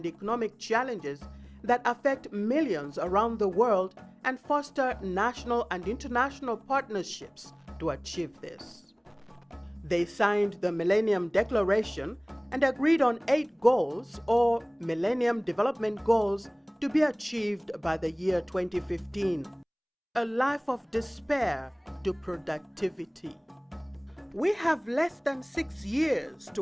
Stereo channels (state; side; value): identical; both; correlation 1.00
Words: economic challenges that affect millions around the world and foster national and international partnerships to achieve this. They signed the Millennium Declaration and agreed on 8 goals or Millennium Development Goals to be achieved by the year 2015. A life of despair to productivity. We have less than 6 years